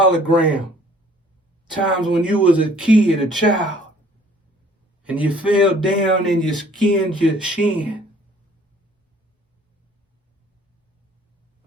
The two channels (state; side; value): normal; both; correlation 0.57